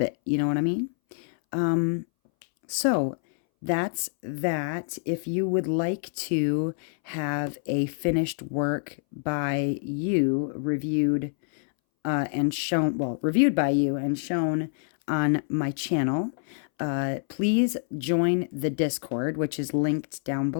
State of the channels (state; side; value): silent; right; 61 dB below the other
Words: it. You know what I mean? So that's that. If you would like to have a finished work by you reviewed and shown, well, reviewed by you and shown on my channel, please join the Discord, which is linked down